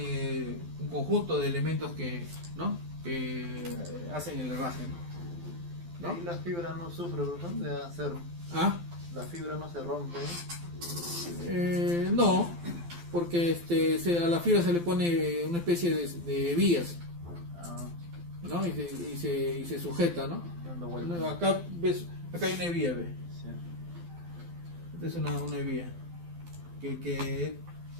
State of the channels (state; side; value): late; left; 12 ms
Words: un conjunto de elementos que hacen el herraje, ¿no? Y la fibra no sufre, ¿verdad? De hacer... ¿Ah? La fibra no se rompe. No, porque a la fibra se le pone una especie de vías, ¿no? Y se sujeta, ¿no? Dando vueltas. Acá hay una vía, ¿ves? Sí. Esta es una vía que es